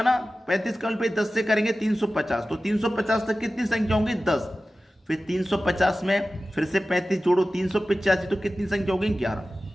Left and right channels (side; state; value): both; normal; correlation 0.95